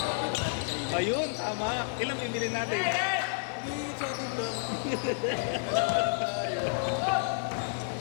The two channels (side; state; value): right; silent; digital silence